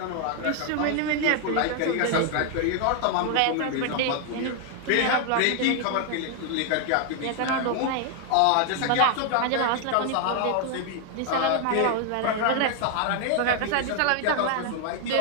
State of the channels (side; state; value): both; different; correlation 0.00